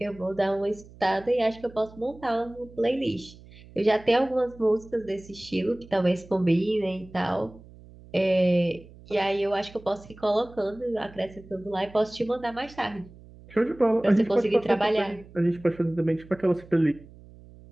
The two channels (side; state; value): right; noise; hum, 21 dB below the sound